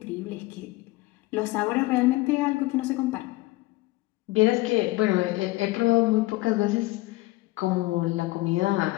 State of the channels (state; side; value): quieter; right; 20.4 dB